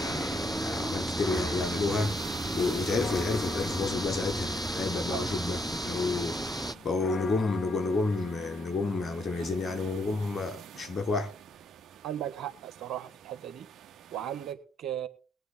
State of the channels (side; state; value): both; normal; correlation 0.74